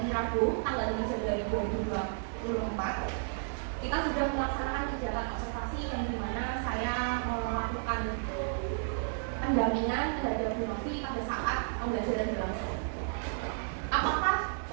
Rabu tanggal 5 Januari 2024 kita sudah melaksanakan kegiatan observasi yang dimana saya melakukan pendampingan terhadap Bu Novi pada saat pembelajaran berlangsung. Apakah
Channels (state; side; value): silent; left; digital silence